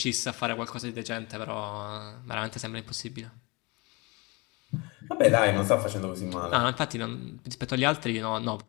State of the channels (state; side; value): quieter; right; 26.7 dB